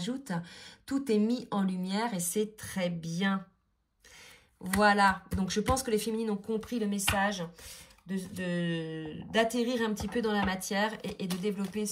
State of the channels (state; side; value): identical; both; correlation 1.00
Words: Tout est mis en lumière et c'est très bien. Voilà, donc je pense que les féminines ont compris le message d'atterrir un petit peu dans la matière et de développer